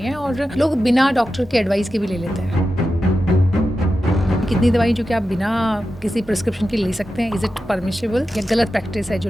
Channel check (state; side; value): normal; both; correlation 0.91